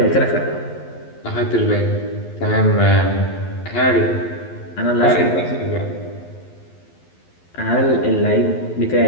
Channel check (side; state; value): right; late; 11 ms